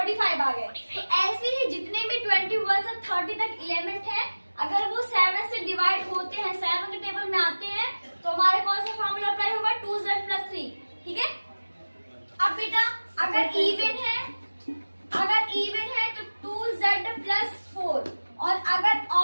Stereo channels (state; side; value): inverted; both; correlation -1.00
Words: आ गए। तो ऐसे ही जितने भी 21 से 30 तक एलिमेंट है, अगर वो 7 से डिवाइड होते हैं, 7 के टेबल में आते हैं, तो हमारे कौन सा फॉर्मूला अप्लाई होगा, 2Z+3, ठीक है। अब बेटा अगर इवन है, तो 2Z+4, और अगर